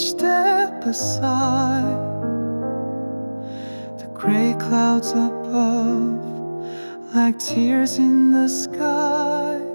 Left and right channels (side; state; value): both; inverted; correlation -1.00